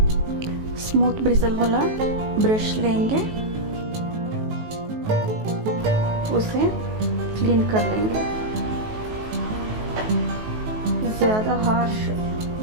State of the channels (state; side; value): late; left; 19 ms